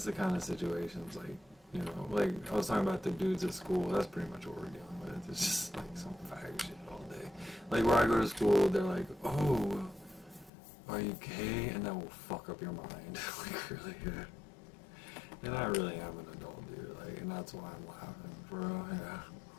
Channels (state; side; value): drops out; right; at 10.5 s